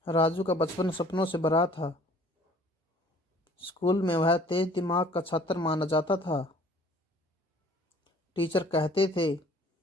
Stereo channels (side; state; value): both; normal; correlation 0.54